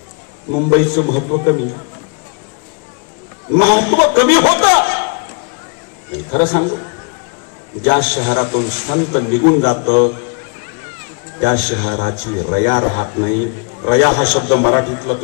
मुंबईचं महत्व कमी होतं. खरं सांगू, ज्या शहरातून संत निघून जातं त्या शहराची रया राहत नाही. रया हा शब्द मराठीतला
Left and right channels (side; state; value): right; quieter; 37.6 dB